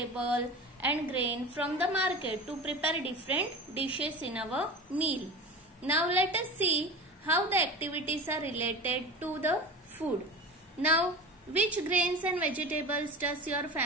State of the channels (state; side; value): normal; both; correlation 0.32